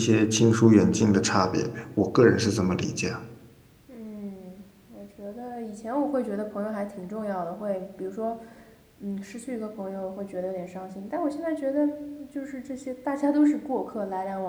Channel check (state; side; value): identical; both; correlation 1.00